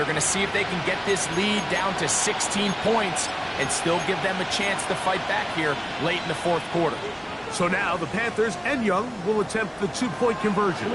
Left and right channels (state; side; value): identical; both; correlation 1.00